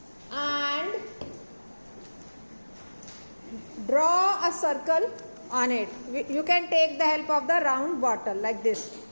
and draw a circle on it. You can take the help of the round bottle like this.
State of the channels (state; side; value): inverted; both; correlation -1.00